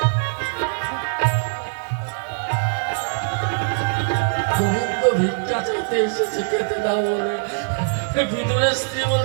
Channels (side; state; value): left; silent; 64 dB below the other